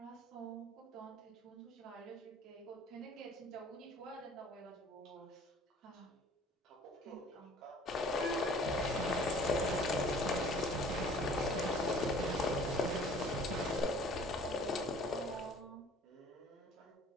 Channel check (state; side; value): normal; both; correlation 0.50